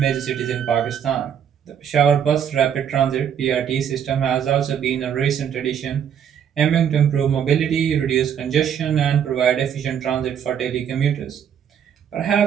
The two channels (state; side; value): quieter; left; 8.6 dB